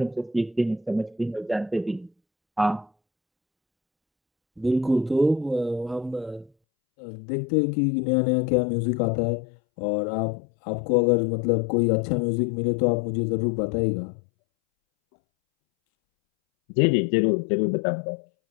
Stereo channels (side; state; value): right; drops out; at 6.5 s